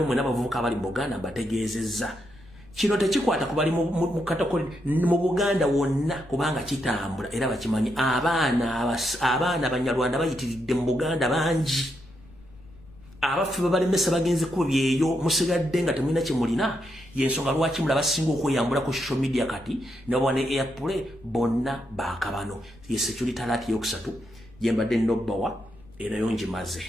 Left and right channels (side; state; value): left; noise; rumble, 23 dB below the sound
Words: n'abavubuka abali mu Buganda mbategeezezza kino tekikwata kubali mu katokoli mu Buganda wonna kubanga kitambula era bakimanyi abaana Abanyarwanda bayitiridde mu Buganda bangi abaffe babalemesa bagenze kubyeyo musigadde nga temulina kyemulina yensonga lwaki mulaba singa okweyambula ku social media kati nobone airplay bonna bakabano ye security alert yokusatu jembadde nobbawa era yonjimaze